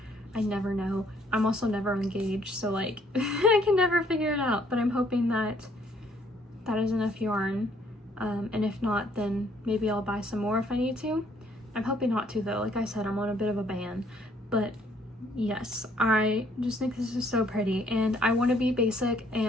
I never know. I'm also never engaged, so like I can never figure it out, but I'm hoping that that is enough yarn. And if not, then maybe I'll buy some more if I need to. I'm hoping not to though. Like I said, I'm on a bit of a ban. But yes, I just think this is so pretty, and I want to be basic,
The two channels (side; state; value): both; normal; correlation 0.65